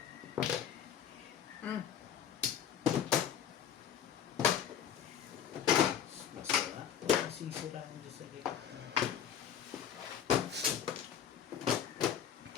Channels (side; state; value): right; quieter; 8.9 dB